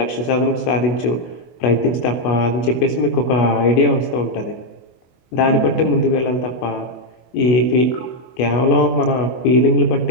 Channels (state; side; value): late; right; 24 ms